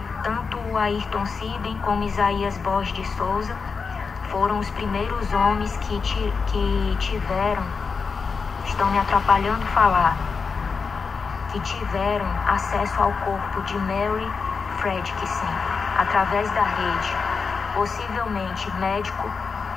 Tanto o Ayrton Siben como Isaías Borges de Souza foram os primeiros homens que tiveram, estão me atrapalhando falar, que tiveram acesso ao corpo de Mary Fredrickson através da rede. Possivelmente médico,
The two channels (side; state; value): right; quieter; 5.1 dB